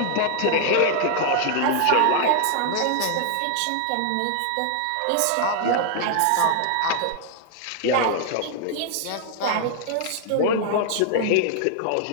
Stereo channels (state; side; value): different; both; correlation 0.00